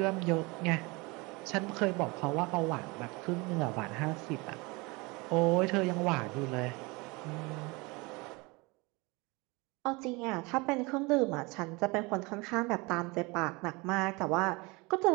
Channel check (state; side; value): quieter; left; 25.8 dB